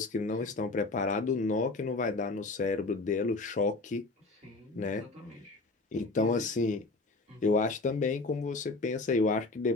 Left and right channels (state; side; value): quieter; right; 3.4 dB